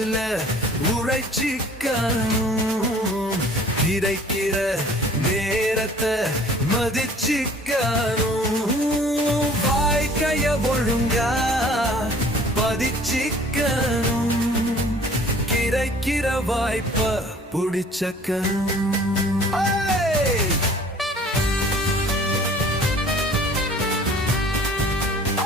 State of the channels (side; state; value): both; normal; correlation 0.51